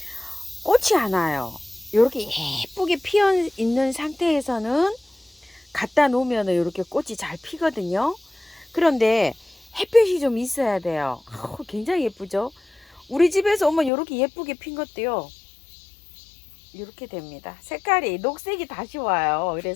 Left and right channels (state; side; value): drops out; right; at 13.9 s